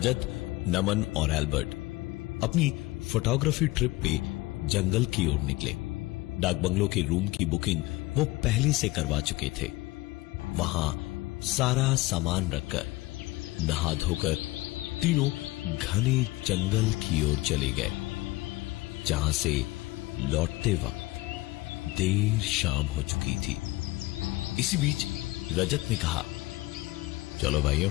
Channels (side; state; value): right; quieter; 20.3 dB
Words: नमन और एल्बर्ट अपनी फोटोग्राफी ट्रिप पे जंगल की ओर निकले। डाक बंगलो के रूम की बुकिंग वो पहले से करवा चुके थे। वहां सारा सामान रखकर नहा धोकर तीनों घने जंगल की ओर चले गए, जहां से लौटते वक्त देर शाम हो चुकी थी। इसी बीच रजत ने कहा, चलो भाइयों,